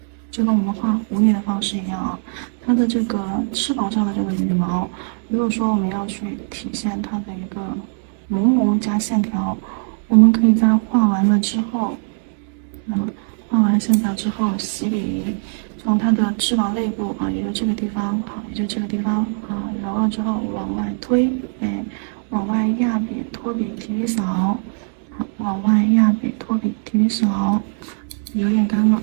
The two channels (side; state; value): left; silent; digital silence